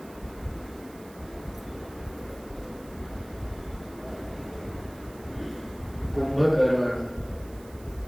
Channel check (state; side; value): noise; right; hiss, 22 dB below the sound